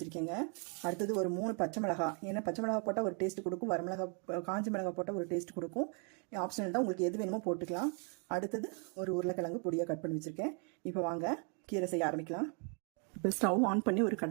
அடுத்தது ஒரு 3 பச்சை மிளகாய். ஏன்னா பச்சை மிளகாய் போட்டால் ஒரு டேஸ்ட் கொடுக்கும், காஞ்சி மிளகாய் போட்டால் ஒரு டேஸ்ட் கொடுக்கும். ஆப்ஷனல் தான், உங்களுக்கு எது வேணுமோ போட்டுக்கலாம். அடுத்தது ஒரு உருளைக்கிழங்கு பொடியாக கட் பண்ணி வச்சுருக்கேன். இப்போ வாங்க கீரை செய்ய ஆரம்பிக்கலாம். இப்போ ஸ்டவ் ஆன் பண்ணி ஒரு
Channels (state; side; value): quieter; left; 39.1 dB